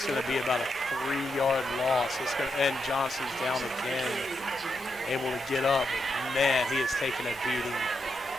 going to be about a 3-yard loss. And Johnson's down again, able to get up. Man, he has taken a beating.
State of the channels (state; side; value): normal; both; correlation 0.83